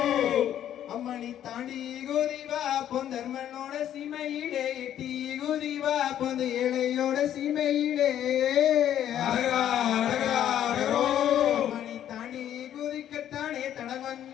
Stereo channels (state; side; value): quieter; right; 10.8 dB